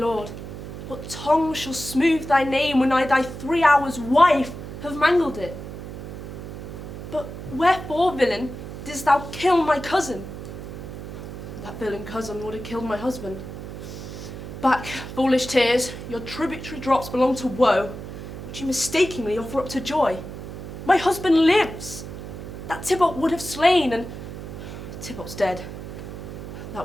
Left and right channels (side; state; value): right; noise; hum, 10 dB below the sound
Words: what tongue shall smooth thy name when I thy 3 hours wife have mangled it? But wherefore, villain, didst thou kill my cousin? That villain cousin would have killed my husband. Back, foolish tears, your tributary drops belong to woe, which you mistakenly offer up to joy. My husband lives! That Tybalt would have slain, and Tybalt's dead. That